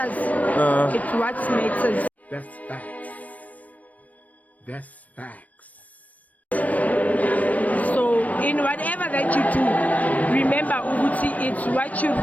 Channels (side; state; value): right; late; 0.071 ms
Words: It's what matters. That's facts. That's facts. So in whatever that you do, remember ukuthi it's what you